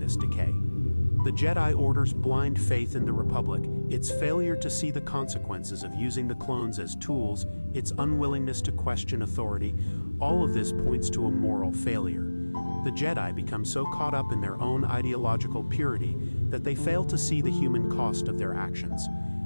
decay. The Jedi Order's blind faith in the Republic, its failure to see the consequences of using the clones as tools, its unwillingness to question authority, all of this points to a moral failure. The Jedi become so caught up in their own ideological purity that they fail to see the human cost of their actions.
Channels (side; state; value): both; inverted; correlation -1.00